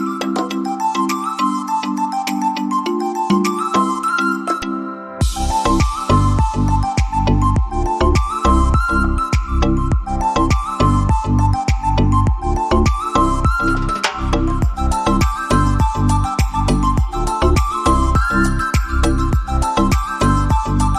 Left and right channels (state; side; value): identical; both; correlation 1.00